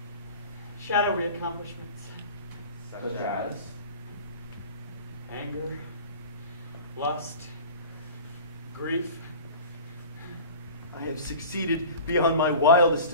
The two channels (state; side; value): inverted; both; correlation -0.38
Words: shadowy accomplishments. Such as? Anger, lust, grief. I have succeeded beyond my wildest